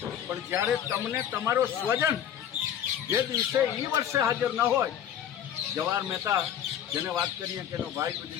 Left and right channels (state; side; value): quieter; right; 9.8 dB